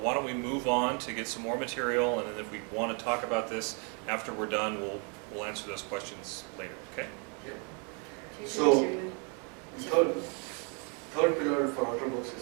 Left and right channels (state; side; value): quieter; left; 36.7 dB